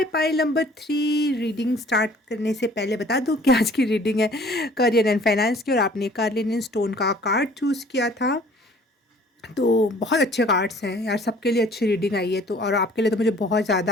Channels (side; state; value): both; normal; correlation 0.53